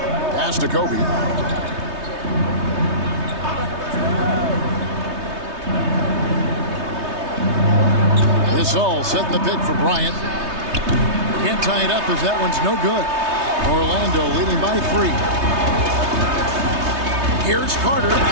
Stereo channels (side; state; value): left; late; 3.2 ms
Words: Pass to Kobe. This all setting the pick for Bryant. Can't tie it up as that one's no good. Orlando leading by 3. Here's Carter,